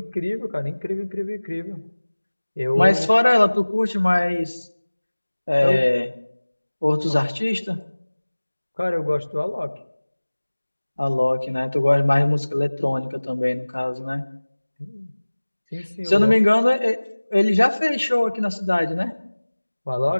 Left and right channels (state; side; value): inverted; both; correlation -1.00